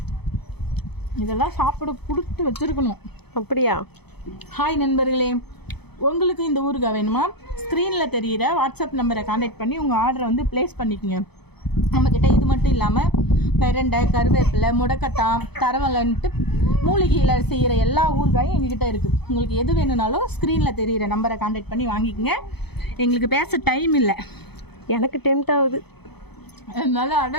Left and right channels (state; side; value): late; right; 0.98 ms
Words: இதெல்லாம் சாப்பிட கொடுத்து வச்சுருக்கணும். அப்படியா? ஹாய் நண்பர்களே, உங்களுக்கு இந்த ஊறுகாய் வேணுமா? ஸ்க்ரீனில் தெரிகிற வாட்ஸ்அப் நம்பரை கான்டாக்ட் பண்ணி உங்கள் ஆர்டரை வந்து ப்ளேஸ் பண்ணிக்கோங்க. நம்மக்கிட்ட இது மட்டும் இல்லாமல் பெரண்டை, கருவேப்பிலை, முடக்கட்டான், தரவலன்ட்டு மூலிகையில் செய்கிற எல்லா ஊறுகாயும் எங்ககிட்ட இருக்குது. உங்களுக்கு எது வேணும்னாலும் ஸ்க்ரீனில் தெரிகிற நம்பரை கான்டாக்ட் பண்ணி வாங்கிக்கோங்க. எங்களுக்கு பேச டைம் இல்லை, எனக்கு டெம்ட் ஆகுது. என்னால்